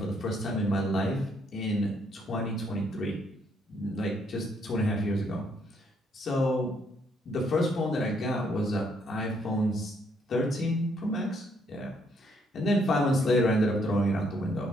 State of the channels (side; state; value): both; normal; correlation 0.71